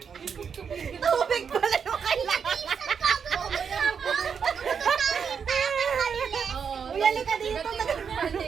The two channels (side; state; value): left; quieter; 6.7 dB